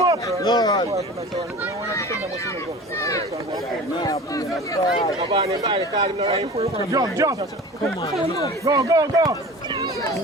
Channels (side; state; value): both; normal; correlation 0.38